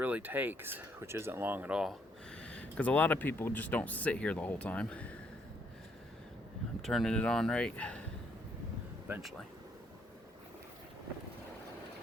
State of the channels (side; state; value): both; normal; correlation 0.71